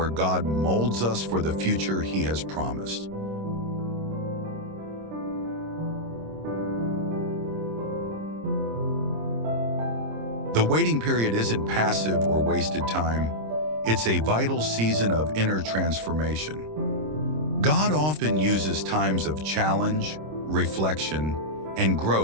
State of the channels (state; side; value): late; left; 26 ms